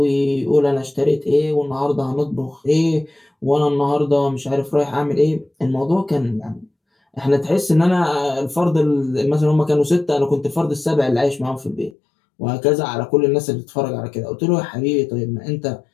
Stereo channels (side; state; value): right; drops out; at 12.0 s